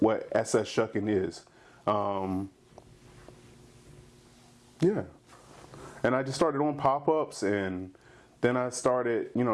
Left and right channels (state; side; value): identical; both; correlation 1.00